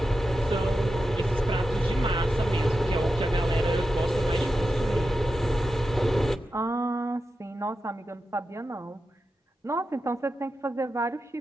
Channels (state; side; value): normal; both; correlation 0.90